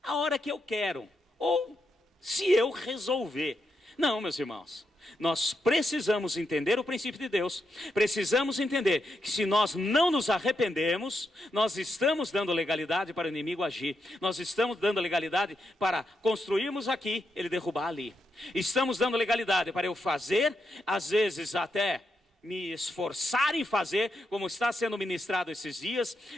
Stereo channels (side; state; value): both; normal; correlation 0.83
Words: a hora que eu quero, ou se eu resolver. Não, meus irmãos, nós precisamos entender o princípio de Deus, precisamos entender que se nós não nos arrependermos, nós estamos dando legalidade para o inimigo agir, nós estamos dando legalidade para construirmos aqui, ele derrubar ali, estamos dando legalidade para eu fazer, às vezes até me esforçar em fazer, como está sendo ministrado esses dias,